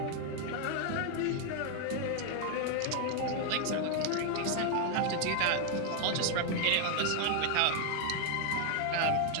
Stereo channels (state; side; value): different; both; correlation 0.00